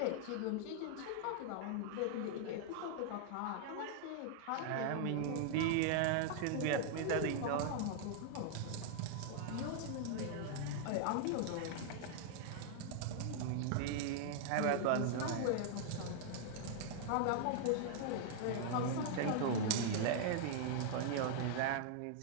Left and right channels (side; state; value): both; different; correlation -0.01